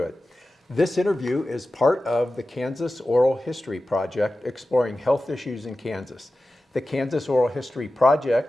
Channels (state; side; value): normal; both; correlation 0.94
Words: it. This interview is part of the Kansas Oral History Project, exploring health issues in Kansas. The Kansas Oral History